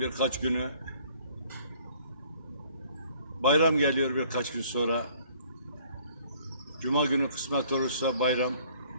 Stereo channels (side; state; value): both; inverted; correlation -0.59